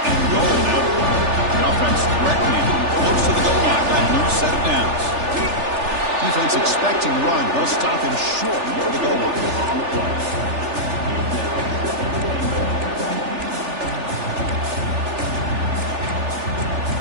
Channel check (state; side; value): late; left; 3.4 ms